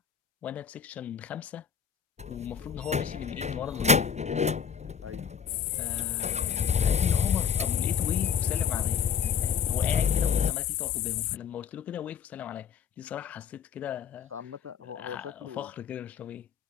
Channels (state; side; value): quieter; right; 7.1 dB